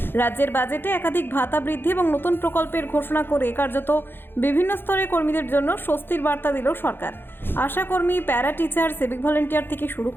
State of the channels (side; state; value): right; late; 0.10 ms